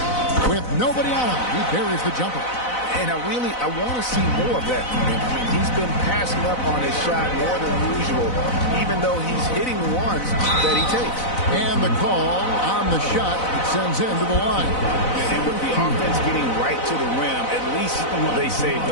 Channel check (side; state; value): right; late; 4.0 ms